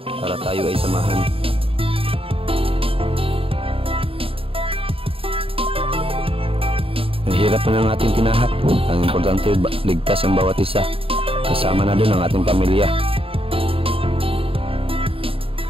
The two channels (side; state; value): left; late; 0.27 ms